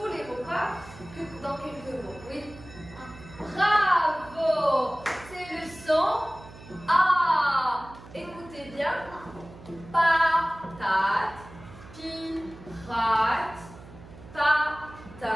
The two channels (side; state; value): right; noise; hum, 18 dB below the sound